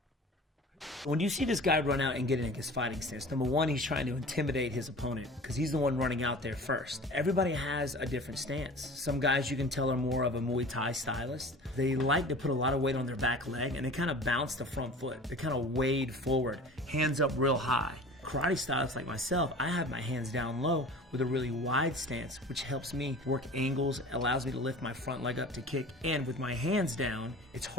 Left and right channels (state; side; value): normal; both; correlation 0.40